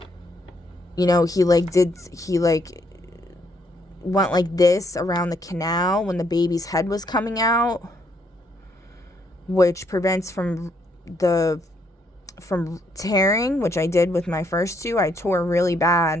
know, he went like this around the canal when the baby's head was coming out, which prevents from tearing, which I did with my first two. I tore really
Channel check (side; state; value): both; normal; correlation 0.72